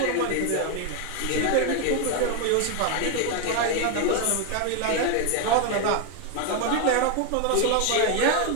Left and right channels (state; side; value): different; both; correlation 0.01